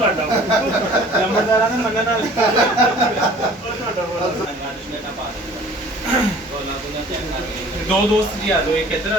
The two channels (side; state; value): both; normal; correlation 0.50